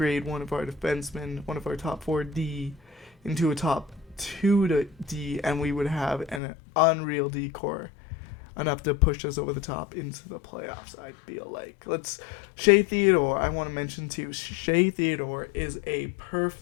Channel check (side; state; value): right; drops out; at 6.4 s